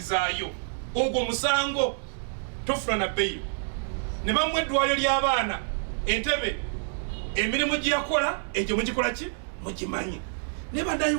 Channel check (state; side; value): silent; left; digital silence